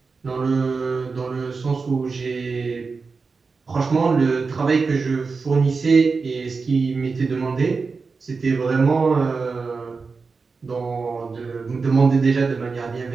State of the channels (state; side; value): quieter; left; 4.6 dB